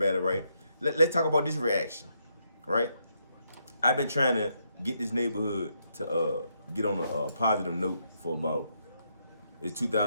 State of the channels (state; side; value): inverted; both; correlation -0.77